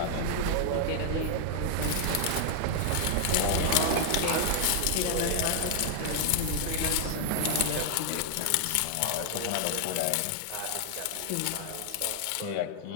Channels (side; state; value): both; different; correlation 0.00